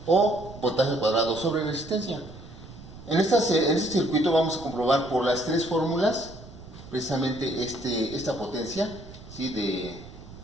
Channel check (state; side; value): noise; right; rumble, 17 dB below the sound